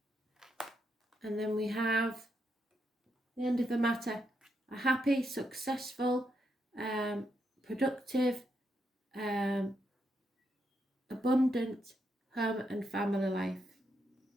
And then we have the end of the matter. A happy, successful, productive, abundant home and family life.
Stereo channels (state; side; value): normal; both; correlation 0.80